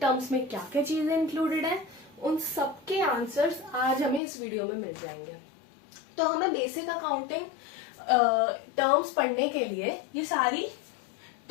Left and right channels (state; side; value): drops out; right; at 4.2 s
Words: terms में क्या क्या चीजें included है, उन सबके आंसर्स आज हमें इस वीडियो में मिल जाएंगे. तो हमें बेसिक अकाउंटिंग टर्म्स पढ़ने के लिए ये सारी